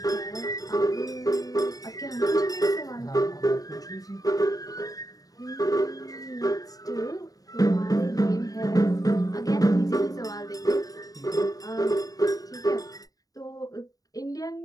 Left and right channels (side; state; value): right; late; 0.18 ms